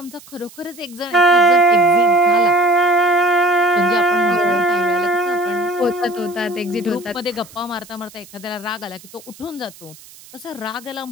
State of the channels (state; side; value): noise; right; hiss, 22 dB below the sound